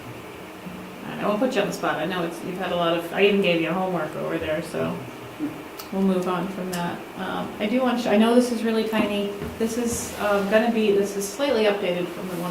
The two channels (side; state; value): both; identical; correlation 1.00